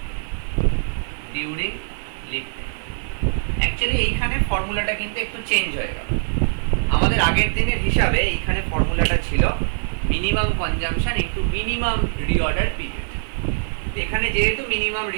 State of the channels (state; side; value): silent; left; digital silence